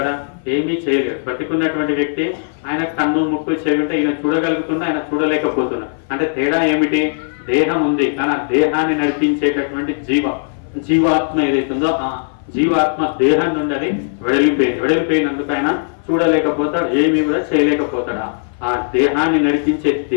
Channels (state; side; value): silent; right; 57 dB below the other